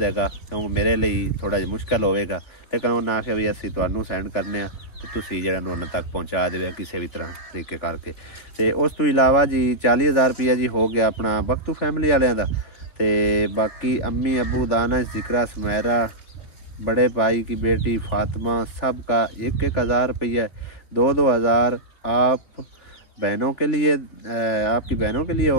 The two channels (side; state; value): right; late; 3.4 ms